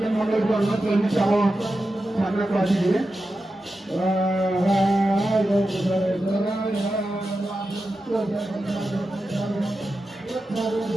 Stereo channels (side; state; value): both; normal; correlation 0.91